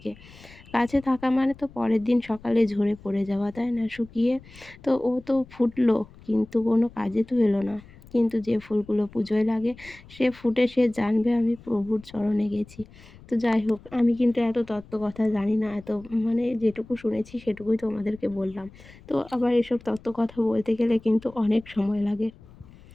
গাছে থাকা তো পরের দিন সকালে ঝরে পড়ে যাওয়া, তাই না, শুকিয়ে। তো ও তো ফুটলো, কিন্তু কোনো কাজে তো এলো না। কিন্তু যে ফুলগুলো পুজোয় লাগে সে ফুটে, সে জানবে আমি প্রভুর চরণে গেছি। তো যাই হোক, আমি কিন্তু এত তত্ত্ব কথা জানি না, এত যেটুকু শুনেছি সেটুকুই তোমাদেরকে বললাম। তো আবার এসব তত্ত্ব কথা বলতে গেলে কিন্তু অনেক সময় লাগে।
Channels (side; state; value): left; noise; rumble, 22 dB below the sound